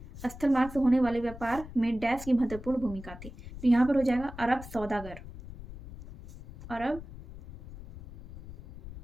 स्थल मार्ग से होने वाले व्यापार में डैश की महत्वपूर्ण भूमिका थी। तो यहाँ पर हो जाएगा अरब सौदागर।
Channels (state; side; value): noise; left; rumble, 14 dB below the sound